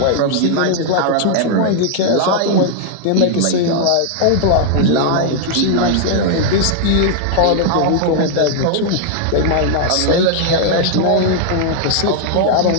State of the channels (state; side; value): different; both; correlation 0.00